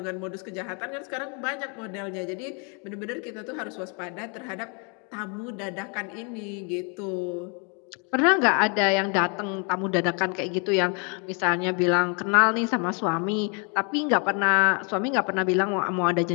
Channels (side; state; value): right; quieter; 35.9 dB